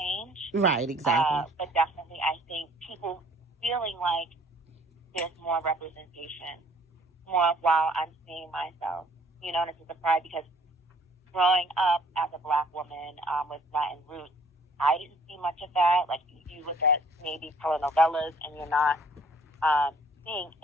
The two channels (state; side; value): normal; both; correlation 0.57